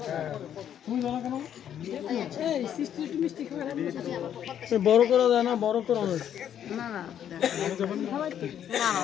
বড় করা যায় না বড় করা না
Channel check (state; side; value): quieter; right; 9.7 dB